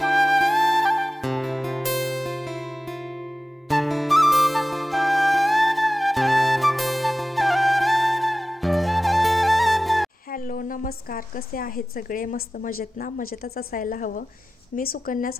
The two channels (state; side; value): normal; both; correlation 0.96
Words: नमस्कार, कसे आहेत सगळे? मस्त मजेत ना? मजेतच असायला हवं. मी सुकन्या